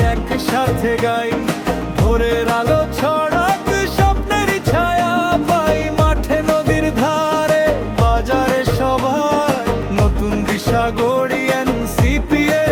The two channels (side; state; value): both; identical; correlation 1.00